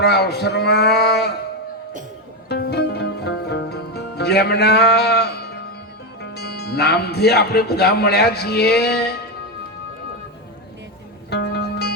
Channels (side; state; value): both; normal; correlation 0.10